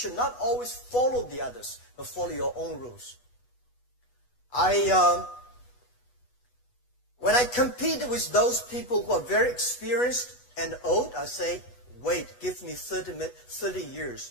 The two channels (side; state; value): right; late; 8.2 ms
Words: not always follow the others, but follow your own rules. When I compete with those people who are very experienced and old, I say, wait, give me 30